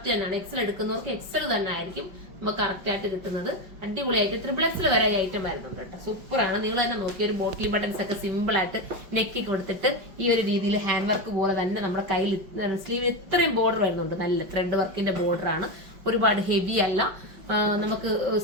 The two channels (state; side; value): late; left; 5.5 ms